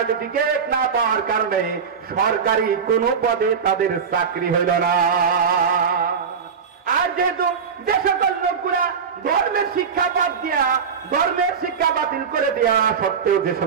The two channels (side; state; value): left; quieter; 6.4 dB